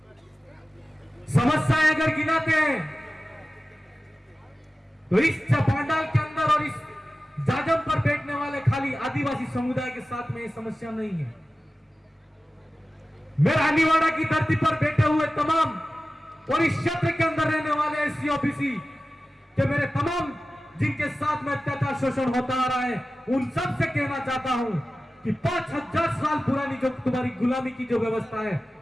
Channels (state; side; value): normal; both; correlation 0.95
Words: समस्याएं अगर गिनाते हैं तो इस पांडाल के अंदर और इस जाजम पर बैठने वाले खाली आदिवासी समुदाय के साथ में ये समस्या नहीं है। मैं रानीवाड़ा की धरती पर बैठे हुए तमाम और इस क्षेत्र के अंदर रहने वाले एससी ओबीसी के मेरे तमाम जिनके साथ में अत्याचार शोषण होता आ रहा है, उन सब से कहना चाहता हूं कि 5000 साल पुरानी जो तुम्हारी गुलामी की जो व्यवस्था है,